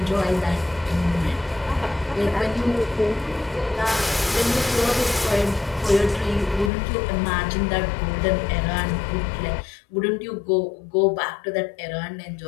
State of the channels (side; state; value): right; drops out; at 6.7 s